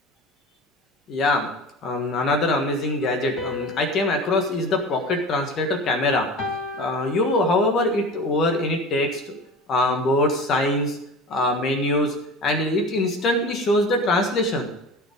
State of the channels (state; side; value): normal; both; correlation 0.34